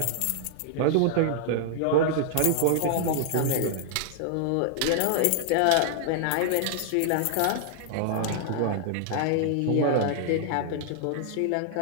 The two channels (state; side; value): different; both; correlation -0.01